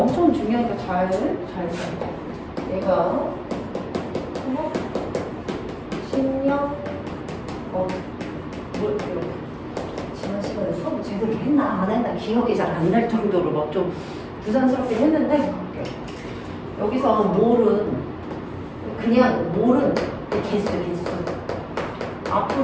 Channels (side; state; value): both; identical; correlation 1.00